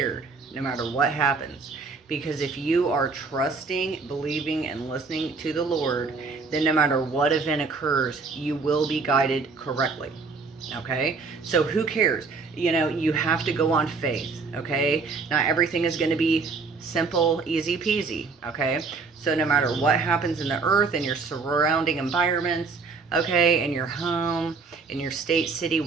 no matter what happens. Because if you are trusting, believing, and listening to the Lord, then no matter what event occurs, you will be guided correctly. Okay? So who cares? You have to go on faith. Okay? Not everything is going to be simple, easy peasy. Okay? So no matter what happens in the earth, in your surrounding environments, okay, in your home, in your state, city,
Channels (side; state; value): left; quieter; 4.5 dB